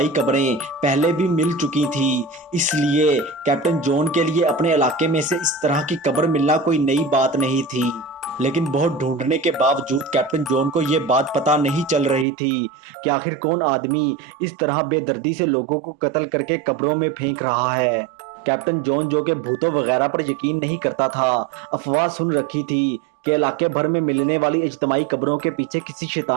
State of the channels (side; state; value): left; drops out; at 12.2 s